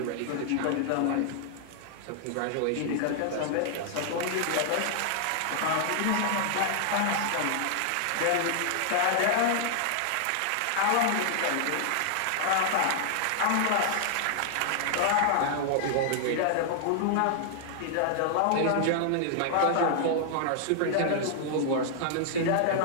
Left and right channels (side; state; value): both; different; correlation -0.01